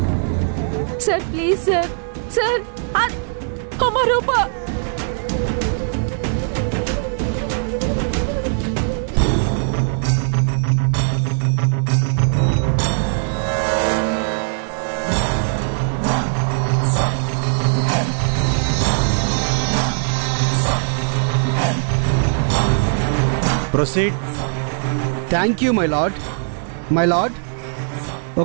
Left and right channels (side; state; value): left; silent; digital silence